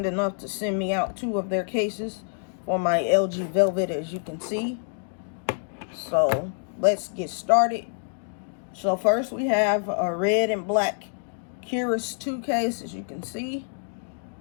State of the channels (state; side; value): silent; right; digital silence